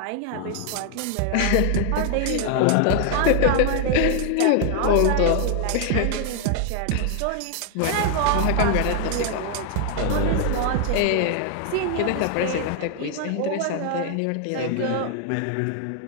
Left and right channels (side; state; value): both; different; correlation 0.00